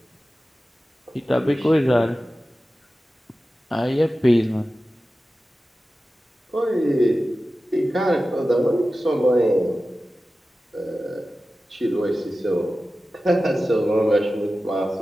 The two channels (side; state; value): both; normal; correlation 0.94